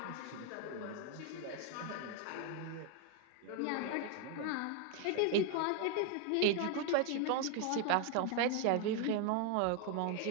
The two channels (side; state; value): both; different; correlation 0.01